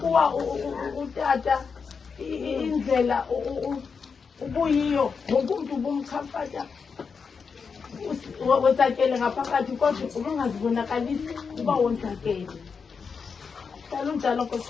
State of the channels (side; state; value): right; quieter; 5.6 dB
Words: utata indlela ubuyiyo wonke umuntu ubumchamfata wonzakele ngaphakathi kodwa ubungazibonakalisi uba wonzakele. Dala unjalo